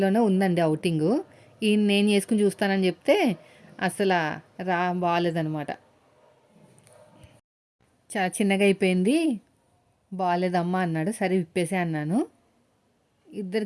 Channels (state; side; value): identical; both; correlation 1.00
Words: ఉందండి అవుటింగు. ఈయన నేను చేసుకుని చూస్తానని చెప్తే అసలు బాగాలేదనమాట. చాలా చిన్నగా అయిపోయింది, బాగాలేదమ్మా అన్నాడు. సరే విప్పేసే అన్నాను.